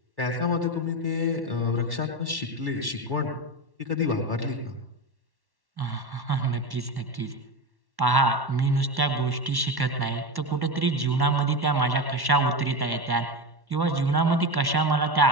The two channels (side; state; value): left; late; 1.1 ms